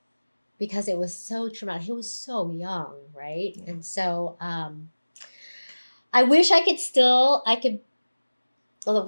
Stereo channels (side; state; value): both; inverted; correlation -1.00